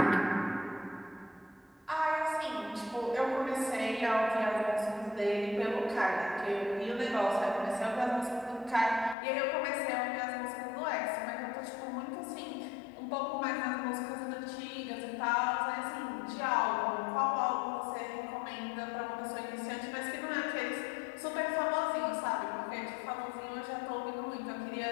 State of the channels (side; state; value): right; drops out; at 9.2 s